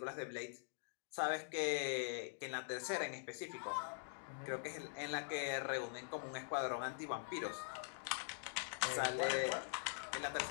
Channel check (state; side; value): silent; right; digital silence